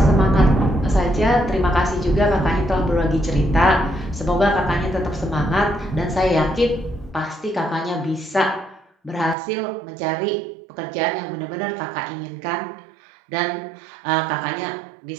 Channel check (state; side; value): drops out; left; at 9.3 s